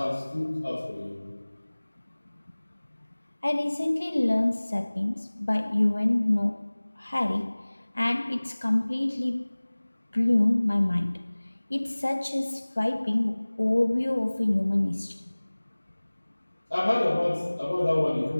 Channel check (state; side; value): inverted; both; correlation -1.00